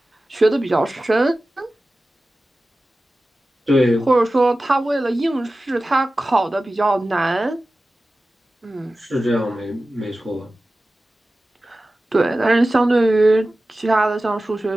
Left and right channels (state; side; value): normal; both; correlation 0.95